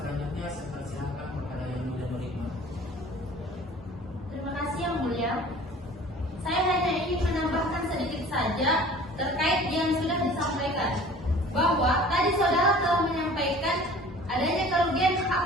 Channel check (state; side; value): normal; both; correlation 0.46